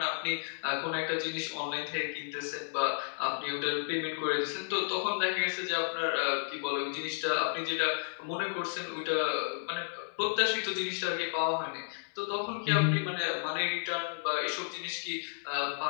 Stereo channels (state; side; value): silent; right; digital silence